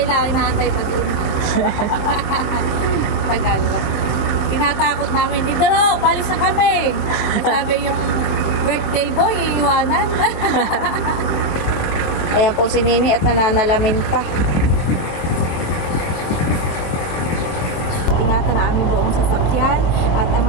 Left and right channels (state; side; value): late; right; 23 ms